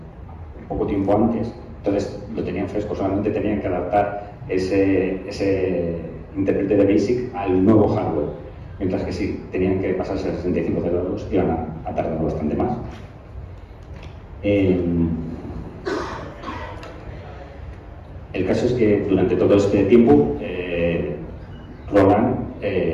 poco tiempo antes, entonces lo tenían fresco, solamente tenían que adaptar ese intérprete de BASIC al nuevo hardware, mientras que si tenían que pasarse a 6502 iban a tardar bastante más. El caso es que durante todo este tiempo Roland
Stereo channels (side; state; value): both; identical; correlation 1.00